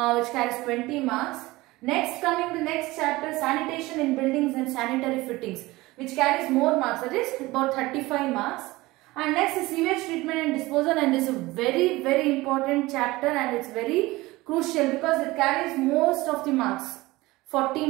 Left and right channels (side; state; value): left; quieter; 20.1 dB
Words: which carries 20 marks. Next, coming the next chapter, sanitation in buildings and sanitary fittings, which carries more marks, that is about 35 marks. And next is sewage treatment and disposal, and this is a very important chapter and it's very crucial because it carries most of the marks, 40